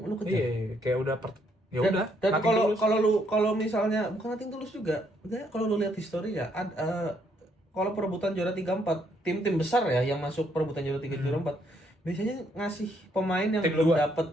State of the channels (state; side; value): normal; both; correlation 0.71